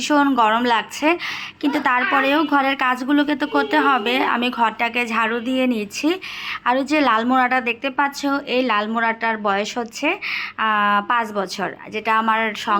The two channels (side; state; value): both; identical; correlation 1.00